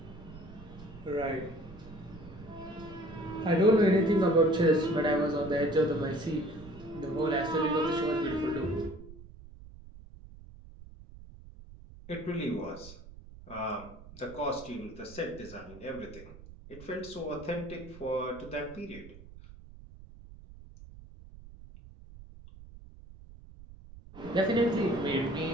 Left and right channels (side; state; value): right; noise; rumble, 18 dB below the sound